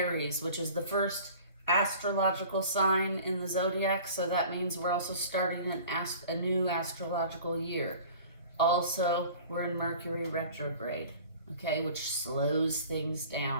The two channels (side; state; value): both; inverted; correlation -0.44